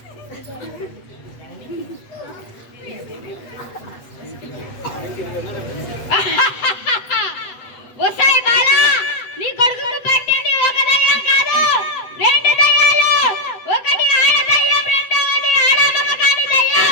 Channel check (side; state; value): right; late; 8.1 ms